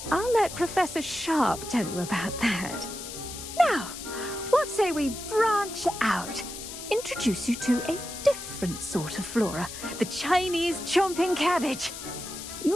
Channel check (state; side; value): noise; left; hiss, 10 dB below the sound